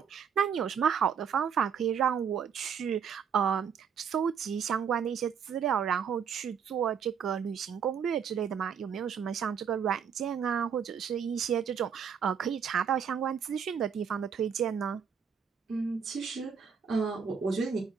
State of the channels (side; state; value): left; quieter; 7.1 dB